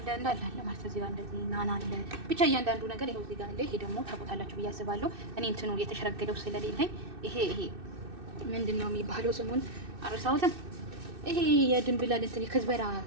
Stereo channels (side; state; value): left; late; 2.6 ms